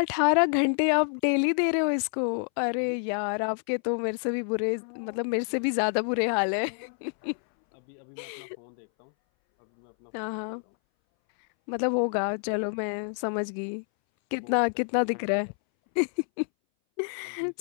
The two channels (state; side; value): silent; right; 59 dB below the other